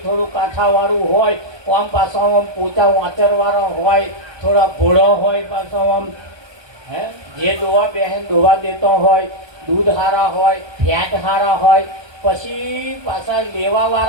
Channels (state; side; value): late; left; 1.2 ms